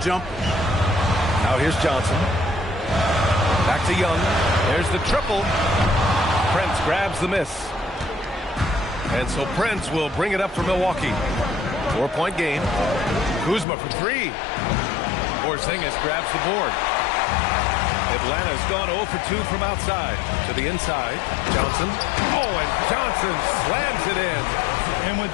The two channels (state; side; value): drops out; right; at 13.7 s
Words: jumpers. Now here's Johnson. Back to Young. There's the triple. Prince grabs the miss. And so Prince will bring it up for Milwaukee. 4-point game. Kuzma for 3. Porzingis grabs the board. Atlanta's gone 0 for 2 from outside. To the inside. Johnson. Oh, and Johnson slams it in. And when